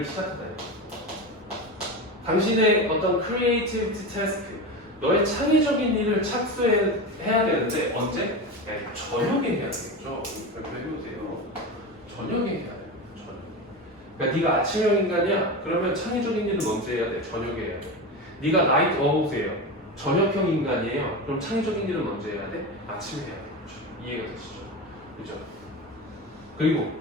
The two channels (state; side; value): normal; both; correlation 0.23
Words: 시작하다. 당신의 어떤 creativity task, 너의 창의적인 일을 착수해야 되는데 언제? 네, 저녁에 해야 되겠죠. 그렇게 해보세요. 저녁에 해야 돼요. 저녁. 그러니까 네가 아침형 인간이야. 그러면 창의적인 일은 언제 해야 돼? 저녁에 해야 돼. 네가 나이트 어우세요. 저녁형 인간이에요. 그럼 창의적인 일은 언제 해야 돼? 아침에 해야 돼. 그렇죠? 이해가 되시죠? 그죠? 그리고